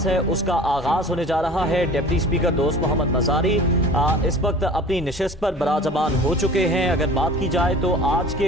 है उसका आगाज़ होने जा रहा है। डिप्टी स्पीकर दोस्त मोहम्मद मज़ारी इस वक्त अपनी नशिस्त पर बराजबान हो चुके हैं। अगर बात की जाए तो आज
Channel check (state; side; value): normal; both; correlation 0.43